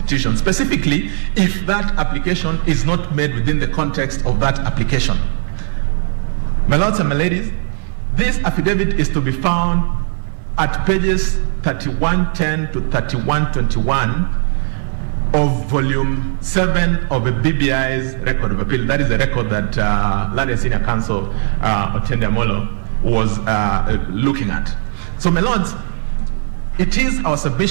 specifically if that application is not made within the context of that application. My lords and my ladies, this affidavit is to be found at pages 3110 to 3121 of volume 7 of the BBI's record of appeal. That is the record that Learned Senior Counsel Otiende Amolo was looking at. So, my lords, it is our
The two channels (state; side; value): silent; left; digital silence